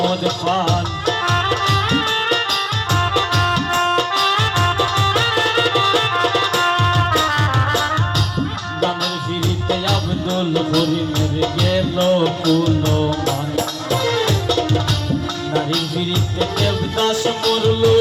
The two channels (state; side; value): identical; both; correlation 1.00